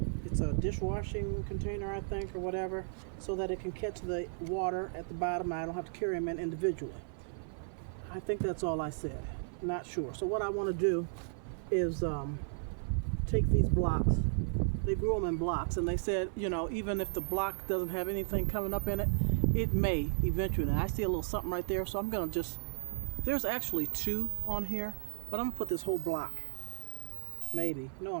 It's a dishwashing container, I think, or whatever, so that it can catch the water at the bottom. I don't have to carry them in individually. I think that's all I said. Not sure. So what I want to do is take these blocks. They grew them in blocks, and they said, you know, even if the block doesn't have anything coming up in it, it may eventually. And I see a little something right there, so I'm going to just, there's actually two on here, but I'm going to put this whole block. Maybe. No,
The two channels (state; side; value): silent; left; digital silence